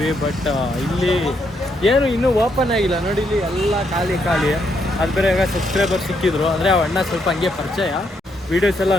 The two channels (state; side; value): normal; both; correlation 0.76